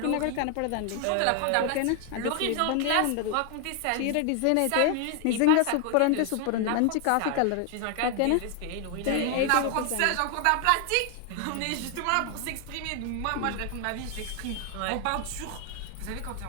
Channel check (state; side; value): different; both; correlation 0.00